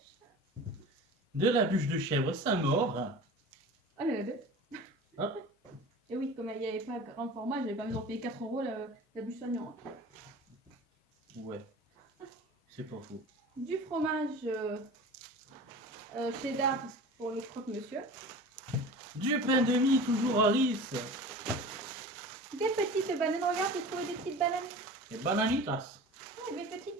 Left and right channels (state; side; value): normal; both; correlation 0.37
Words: De la bûche de chèvre, ça mord. Oh, il y en a deux. Ah. Et oui, comme il n'y avait pas grand format, j'avais pas besoin de payer 4 € la bûche soignant. Hein. Ouais. C'est pas faux. Du fromage cheddar pour le croque-monsieur. Du pain de mie, toujours à riz. Des petites bananes. Regarde, j'ai trouvé des petites bananes. Et bananitas. Ouais, des